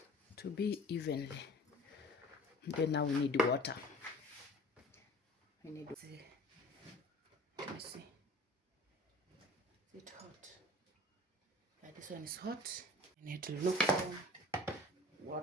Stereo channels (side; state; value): both; normal; correlation 0.46